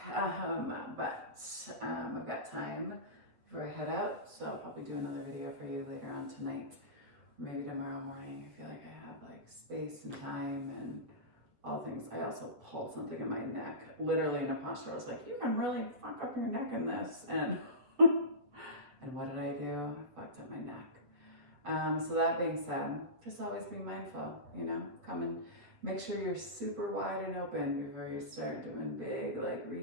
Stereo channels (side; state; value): left; late; 7.6 ms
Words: But I've got time before I head out. So I'll probably do another video for you later on tonight. Maybe tomorrow morning. I feel like I have like space and time and all things. I also pulled something in my neck, literally in a posture. I was like, you can really fuck up your neck in this. And and what did I do? I fucked up my neck. So that being said, just always be mindful, come and make sure you're super wide and open before you start doing big like